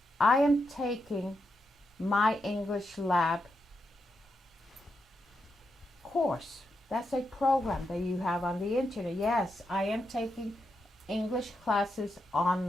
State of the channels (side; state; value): both; normal; correlation 0.84